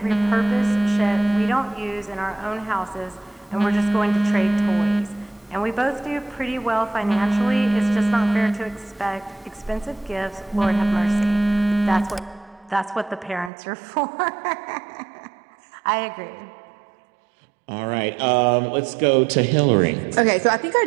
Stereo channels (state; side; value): drops out; left; at 13.5 s